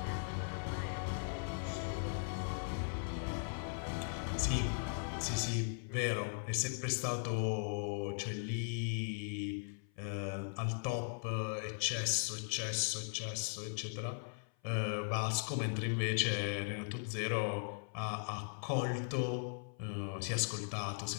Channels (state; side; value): silent; right; 52 dB below the other